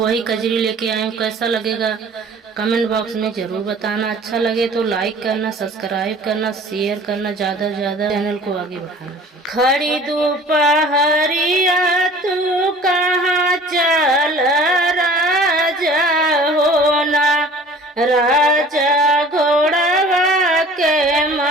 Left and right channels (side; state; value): both; normal; correlation 0.47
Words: कजरी लेके आई हूँ। कैसा लगेगा कमेंट बॉक्स में जरूर बताना। अच्छा लगे तो लाइक करना, सब्सक्राइब करना, शेयर करना, ज्यादा से ज्यादा चैनल को आगे बढ़ाना। खड़ी दोपहरिया तू कहाँ चल राजा होना, राजा घोड़वा के